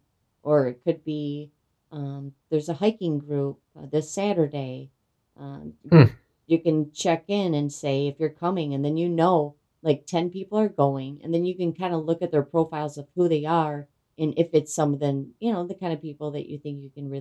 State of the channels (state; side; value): identical; both; correlation 1.00